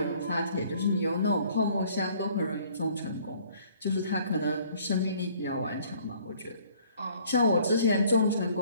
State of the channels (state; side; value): inverted; both; correlation -0.58